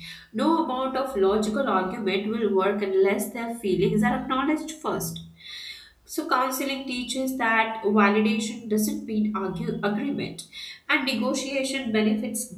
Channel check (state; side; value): identical; both; correlation 1.00